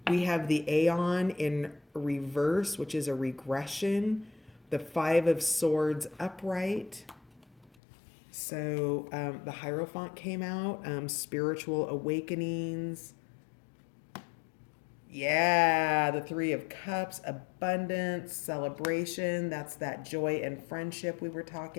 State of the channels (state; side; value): drops out; right; at 7.7 s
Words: We have the Aeon in reverse, which is a regression. The Five of Swords upright. So the Hierophant came out, spiritual awakenings. Yeah, the Three of Cups, abundance, celebration. That's that joy and friendship we were